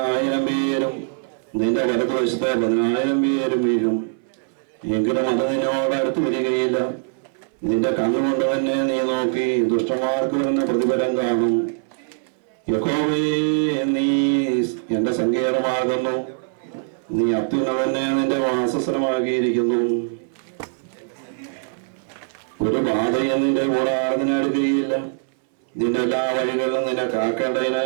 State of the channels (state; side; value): silent; left; 64 dB below the other